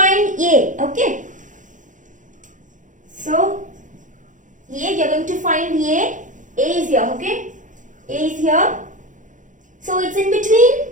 A, okay? So, A, you're going to find A. A is here, okay? A is here. So, it's in between.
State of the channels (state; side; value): late; left; 0.37 ms